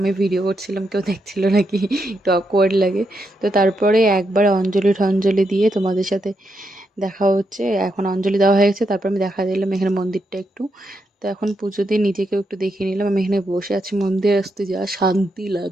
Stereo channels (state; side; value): normal; both; correlation 0.82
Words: ভিডিও করছিলাম কেউ দেখছিল নাকি, একটু অকওয়ার্ড লাগে। তো তারপরে একবার অঞ্জলি টঞ্জলি দিয়ে তোমাদের সাথে দেখা হচ্ছে। এখন অঞ্জলি দেওয়া হয়ে গেছে, তারপর আমি দেখা দিলাম এখানে মন্দিরটা একটু। তো এখন পুজো দিয়ে নিজেকেও একটু দেখিয়ে নিলাম। আমি এখানে বসে আছি, মন্দিরে আসতে যা শান্তি